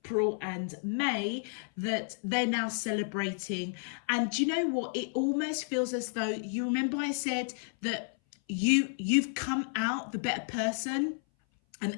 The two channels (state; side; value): silent; right; 57 dB below the other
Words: and May, that they're now celebrating. And do you know what? It almost feels as though, you remember I said that you've come out the better person. And